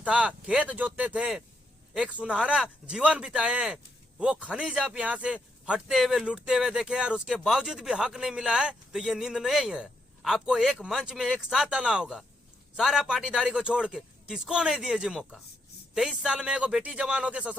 था, खेत जोतते थे, एक सुनहरा जीवन बिताए हैं, वो खनिज आप यहाँ से हटते हुए लूटते हुए देखे और उसके बावजूद भी हक नहीं मिला है, तो ये नींद नहीं है। आपको एक मंच में एक साथ आना होगा, सारा पाटीदारी को छोड़ के। किसको नहीं दिए जी मौका? 23 साल में एगो बेटी जवान होके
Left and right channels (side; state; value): both; normal; correlation 0.79